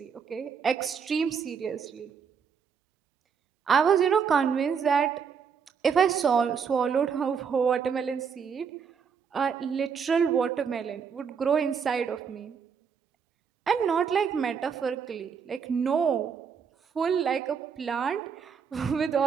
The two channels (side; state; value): left; quieter; 6.5 dB